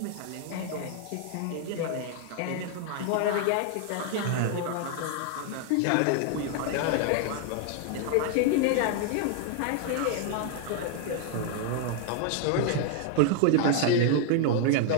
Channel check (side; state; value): both; different; correlation 0.00